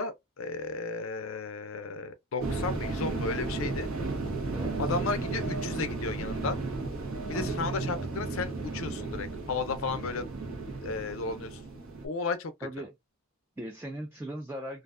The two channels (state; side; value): normal; both; correlation 0.25